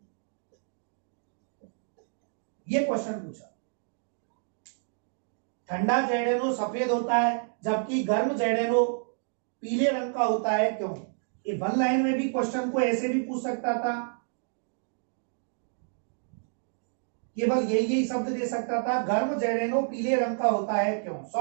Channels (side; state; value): left; silent; 58 dB below the other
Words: ये क्वेश्चन पूछा, ठंडा जेरेनो सफेद होता है जबकि गर्म जेरेनो पीले रंग का होता है क्यों। ये वन लाइन में भी क्वेश्चन को ऐसे भी पूछ सकता था, केवल यही शब्द दे सकता था, गर्म जेरेनो पीले रंग का होता है क्यों।